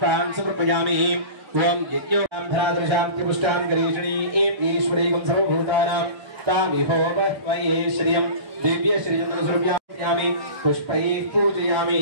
समर्पयामि। ओं यज्ञोऽन्धरादृशान्ति पुष्टान् गणेशणी ईश्वरीकं सर्वभूतानां तामिहोपह्वये श्रियं दिव्यश्रियं समर्पयामि पुष्पैः पूजयामि।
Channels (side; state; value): left; late; 1.3 ms